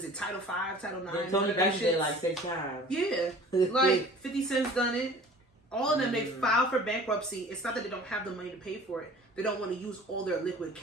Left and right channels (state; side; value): normal; both; correlation 0.45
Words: it? Title 5, Title 9. Yeah, Tony Banks did like 6 times. Yeah, like 50 Cent's done it. All of them, they file for bankruptcy. It's not that they don't have the money to pay for it. They don't want to use all their liquid